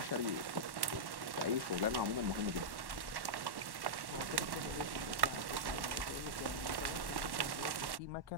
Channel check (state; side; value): late; left; 1.1 ms